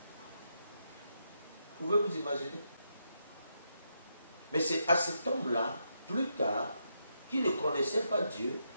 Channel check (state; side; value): inverted; both; correlation -0.81